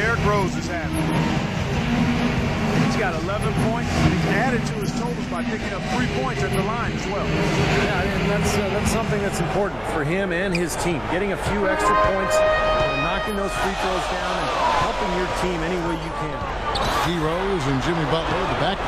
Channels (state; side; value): identical; both; correlation 1.00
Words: Rose is having? He's got 11 points, and he's added to his totals by picking up 3 points at the line as well. Yeah, and that's something that's important for him and his team. Getting a few extra points, knocking those free throws down, and helping your team any way you can. D. Rose and Jimmy Butler at the back.